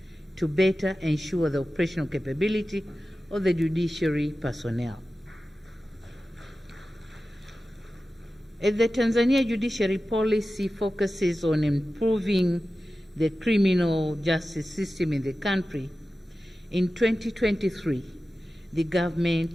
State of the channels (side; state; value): both; normal; correlation 0.94